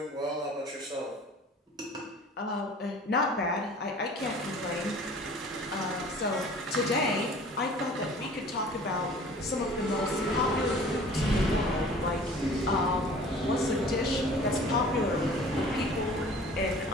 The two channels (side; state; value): both; normal; correlation 0.47